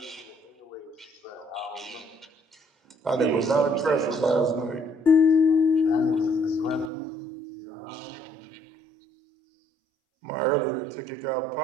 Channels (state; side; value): drops out; left; at 6.9 s